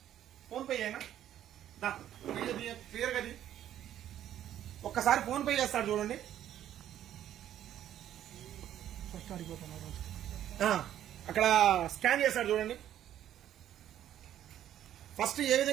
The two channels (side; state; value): left; quieter; 11.4 dB